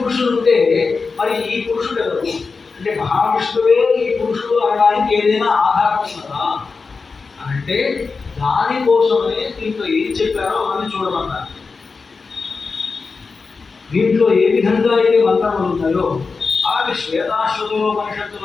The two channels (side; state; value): right; quieter; 4.5 dB